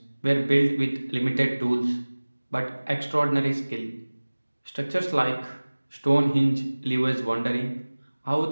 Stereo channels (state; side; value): inverted; both; correlation -1.00